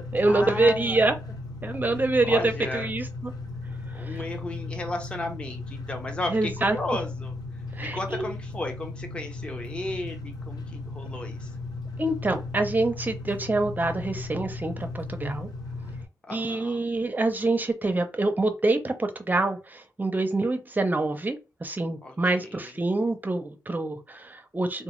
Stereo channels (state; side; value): normal; both; correlation 0.83